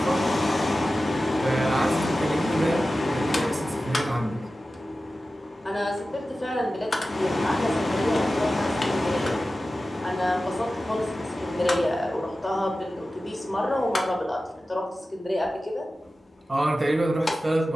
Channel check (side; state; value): both; normal; correlation 0.94